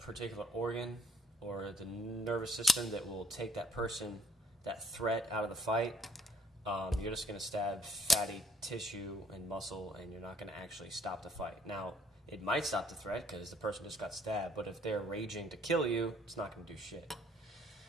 organ or the nervous system that will take that person, that threat out of the fight, you're just going to stab fatty tissue and muscle, and you're not going to actually stop the fight. Now, it might stop the threat because the person just got stabbed, but if they're raging to kill you, it's not going to do shit.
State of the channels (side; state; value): both; normal; correlation 0.65